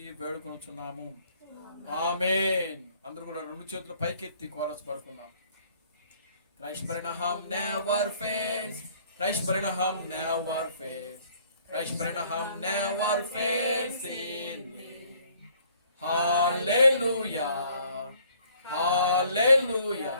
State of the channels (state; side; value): inverted; both; correlation -0.60